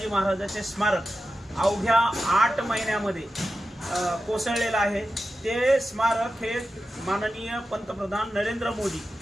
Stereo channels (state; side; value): normal; both; correlation 0.92